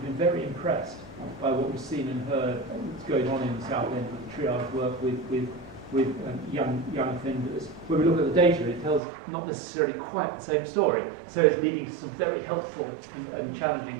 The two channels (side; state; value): left; drops out; at 9.0 s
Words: been very impressed by what we've seen and heard that's going on in Southend with the triage work with young offenders. When we look at the data, it tells not necessarily quite the same story, so it's leading to some very helpful and challenging